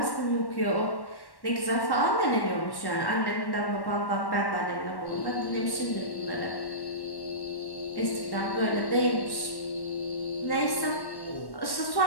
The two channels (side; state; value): right; late; 1.1 ms